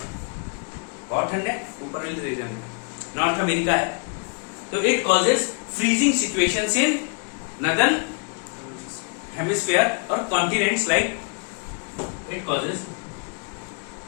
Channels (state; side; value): quieter; right; 37.4 dB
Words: बहुत ठंड है, ऊपर वाले रीजन में। नॉर्थ अमेरिका है, तो it causes freezing situations in northern hemisphere और continents, like it causes